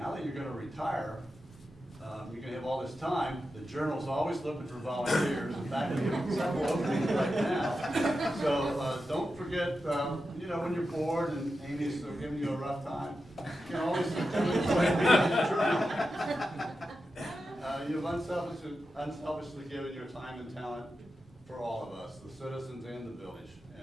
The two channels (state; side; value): normal; both; correlation 0.90